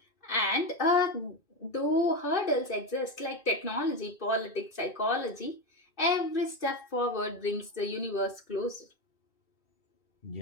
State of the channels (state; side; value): late; right; 2.5 ms